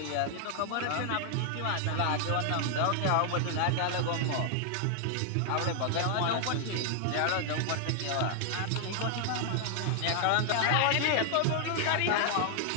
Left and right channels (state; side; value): different; both; correlation 0.00